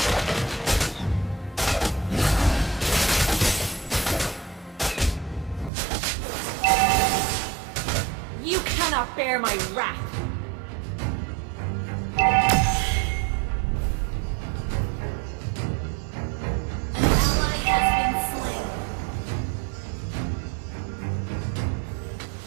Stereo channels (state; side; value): drops out; left; at 5.7 s